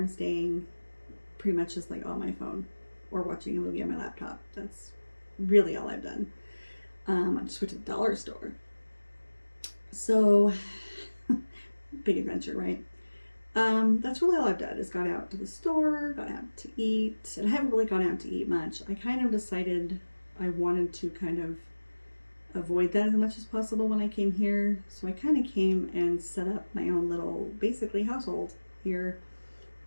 staying, pretty much just like on my phone or watching a movie on my laptop. That's really all I've done. I just went to the dollar store. So, big adventure, right? That's really all I've done is gone out to the store, gone out to eat, and I haven't really gone out to eat much. I kind of decided I wanted to kind of avoid that as much as possible when I came here. So I kind of came and set up my own little, basically, household here,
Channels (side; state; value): both; inverted; correlation -1.00